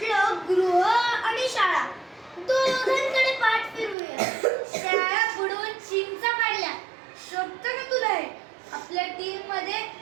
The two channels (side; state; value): left; drops out; at 4.0 s